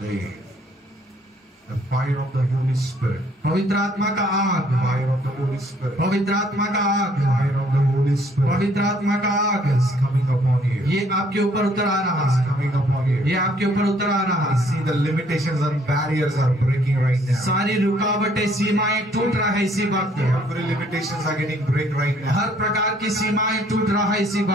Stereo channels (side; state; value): both; normal; correlation 0.64